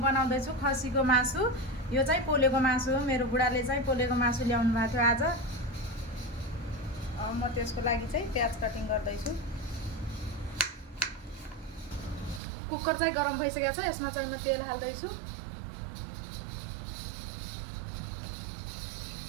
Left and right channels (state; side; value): drops out; left; at 12.4 s